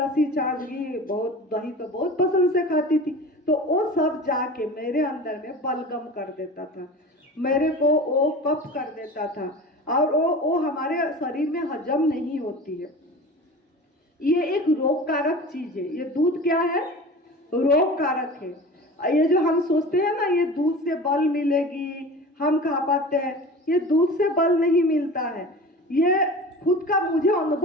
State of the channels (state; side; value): normal; both; correlation 0.36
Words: छाछ, घी, दही तो बहुत पसंद से खाती थी। तो वो सब जाके मेरे अंदर में बलगम कर देता था, मेरे को वो कफ कर देता था, और वो हमारे शरीर में हजम नहीं होती है। ये एक रोग कारक चीज है। ये दूध क्या है? रोग कारक है। ये जो हम सोचते हैं ना, ये दूध से बल मिलेगी, हम खा पाते हैं, ये दूध से बल नहीं मिलता है। ये खुद का मुझे